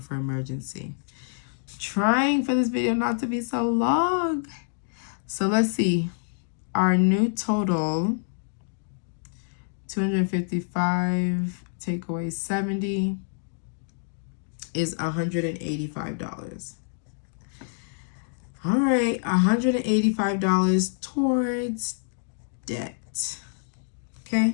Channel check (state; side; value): silent; right; digital silence